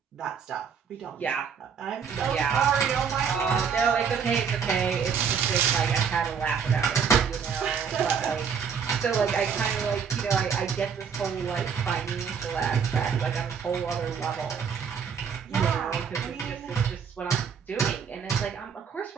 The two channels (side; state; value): left; quieter; 6.7 dB